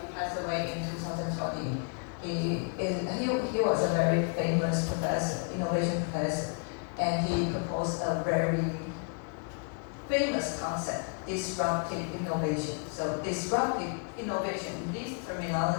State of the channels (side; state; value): right; quieter; 39.0 dB